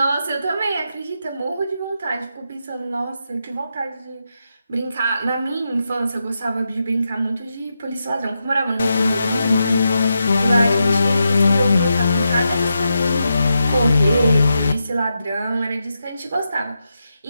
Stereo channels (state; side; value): inverted; both; correlation -0.86